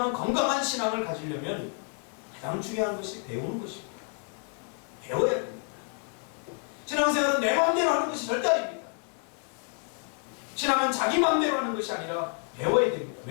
건강한 신앙을 가지려면 가장 중요한 것이 배우는 것입니다. 배워야 됩니다. 신앙생활은 내 마음대로 하는 것이 절대 아닙니다. 신앙은 자기 마음대로 하는 것이 아니라 배워야 됩니다.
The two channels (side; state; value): right; quieter; 39.4 dB